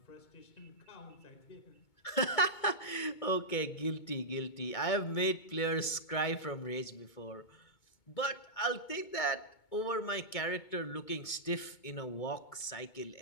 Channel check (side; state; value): right; late; 2.2 ms